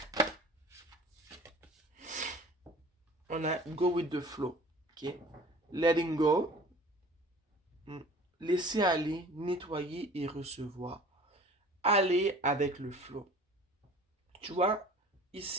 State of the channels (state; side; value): normal; both; correlation 0.45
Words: On a go with the flow, ok? Letting go, laisser aller, nettoyer et recevoir. Aller avec le flow. Tu vois,